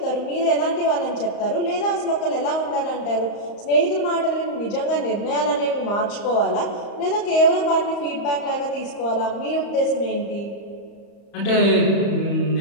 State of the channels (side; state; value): right; late; 35 ms